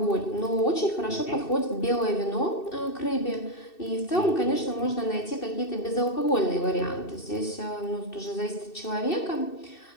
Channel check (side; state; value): right; late; 2.7 ms